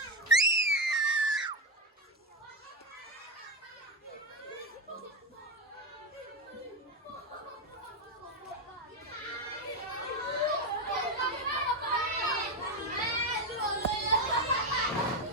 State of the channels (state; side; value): normal; both; correlation 0.09